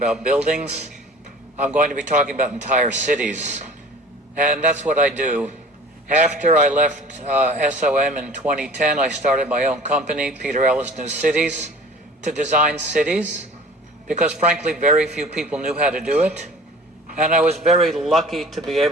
buildings. I'm going to be talking about entire cities. And that's what I do. After I left SOM in 2010, I started my own company, Peter Ellis New Cities, to design cities, because frankly, very few people knew how to do it. And I was very lucky to be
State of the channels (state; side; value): normal; both; correlation 0.44